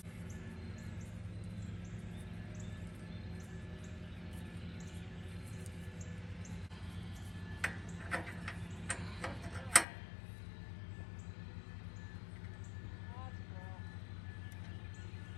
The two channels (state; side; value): drops out; right; at 9.9 s